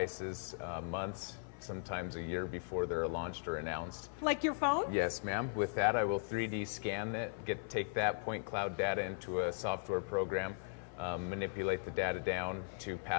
months, sometimes a year before they're launched or announced. Like your phone? Yes, ma'am. With that, I will 3D scan it, take that point cloud data into a software program, manipulate the data down to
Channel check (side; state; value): right; silent; 52 dB below the other